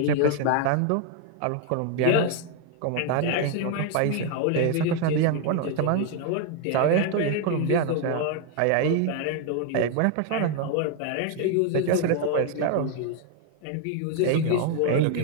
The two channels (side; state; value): both; different; correlation 0.01